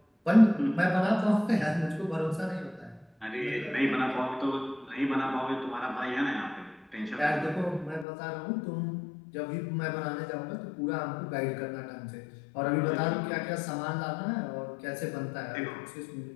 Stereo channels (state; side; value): drops out; right; at 8.1 s